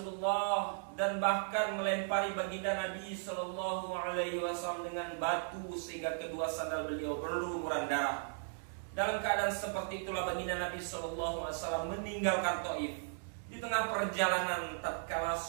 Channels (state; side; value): silent; left; digital silence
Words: dan bahkan melempari baginda Nabi SAW dengan batu sehingga kedua sandal beliau berlumuran darah. Dalam keadaan seperti itulah baginda Nabi SAW meninggalkan Taif. Di tengah perjalanan, tatkala